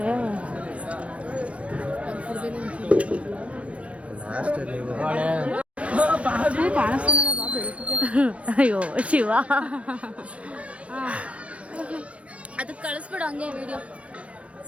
ಅಯ್ಯೋ ಶಿವ, ಅದಕ್ಕೆ ಕಳಿಸ್ಬಿಡು ಹಂಗೆ ವಿಡಿಯೋ.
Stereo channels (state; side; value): late; left; 0.063 ms